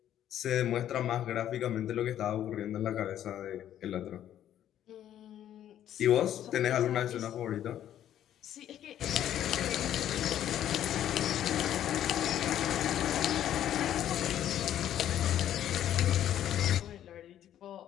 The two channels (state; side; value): quieter; right; 11.2 dB